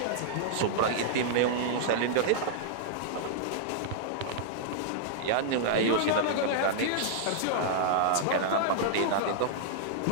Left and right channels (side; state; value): both; different; correlation -0.01